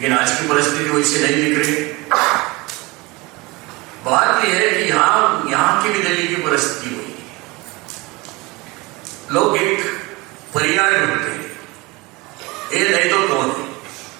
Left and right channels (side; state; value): left; quieter; 23.9 dB